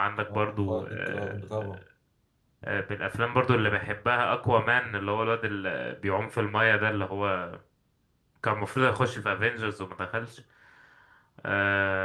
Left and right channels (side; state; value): both; identical; correlation 1.00